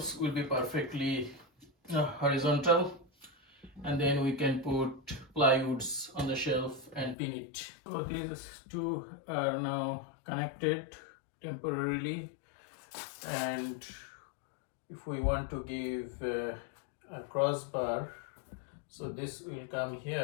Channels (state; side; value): drops out; right; at 7.2 s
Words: will be perfectly horizontal, and then we can put plywoods on the shelf and pin it. So these 2 are now connected temporarily, and if we want to give a crossbar, so this will come